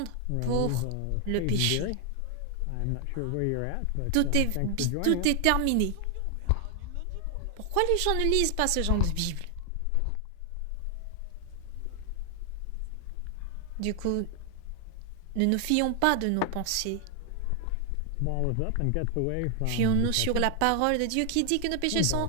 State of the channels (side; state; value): both; different; correlation 0.00